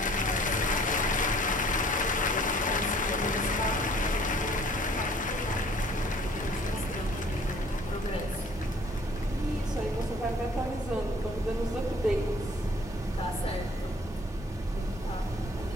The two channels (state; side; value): normal; both; correlation 0.54